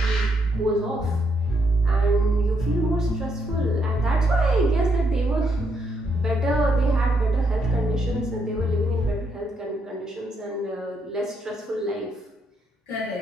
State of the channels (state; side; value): normal; both; correlation 0.76